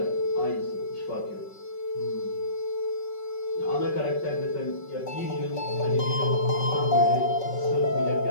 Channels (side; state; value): right; late; 5.3 ms